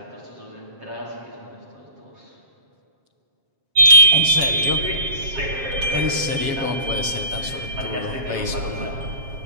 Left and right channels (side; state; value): left; late; 7.5 ms